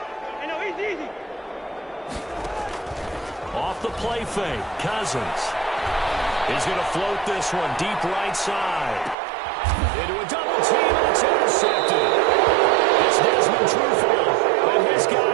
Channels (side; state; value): left; drops out; at 9.2 s